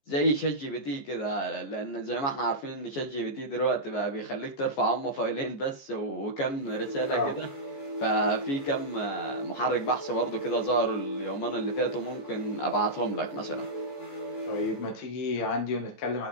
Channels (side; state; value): right; late; 14 ms